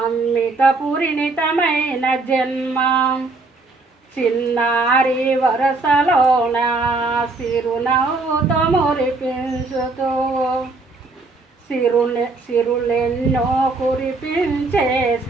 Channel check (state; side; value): quieter; left; 3.5 dB